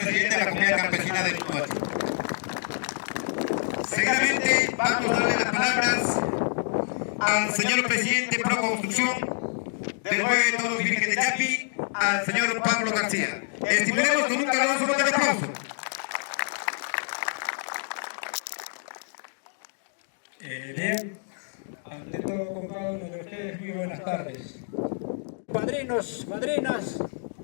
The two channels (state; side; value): silent; right; digital silence